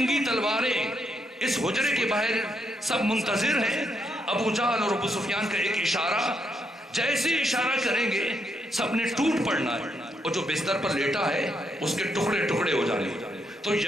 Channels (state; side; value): normal; both; correlation 0.78